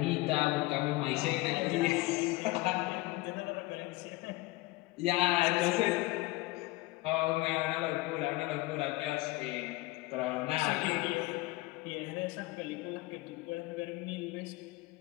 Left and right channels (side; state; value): right; quieter; 20.4 dB